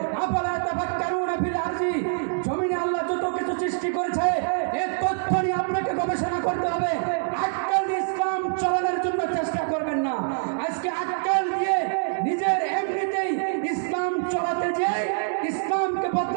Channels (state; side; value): silent; left; digital silence